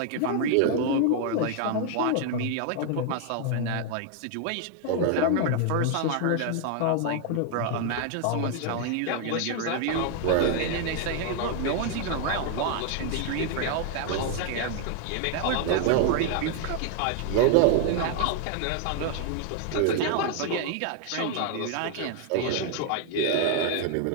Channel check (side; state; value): both; different; correlation 0.00